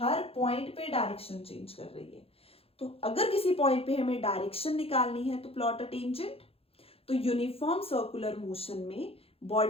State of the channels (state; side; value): late; right; 0.28 ms